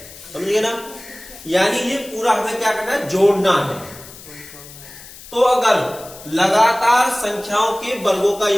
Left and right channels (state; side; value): noise; left; hiss, 17 dB below the sound